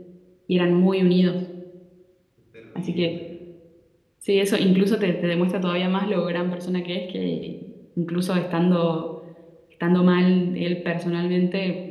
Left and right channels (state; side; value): identical; both; correlation 1.00